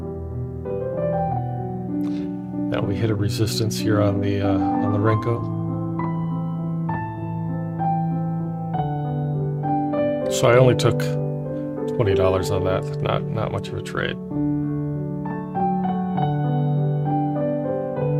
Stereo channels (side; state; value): both; identical; correlation 1.00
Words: Now we hit a resistance here on the Renko. So I only took $20 on that. Not much of a trade.